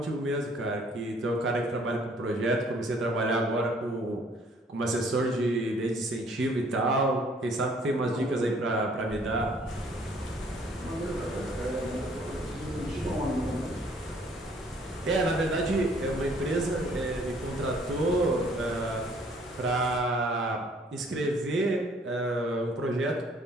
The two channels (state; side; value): normal; both; correlation 0.60